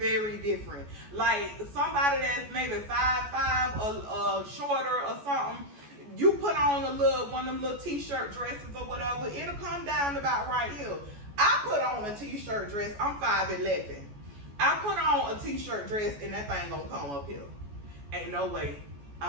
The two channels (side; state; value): left; late; 14 ms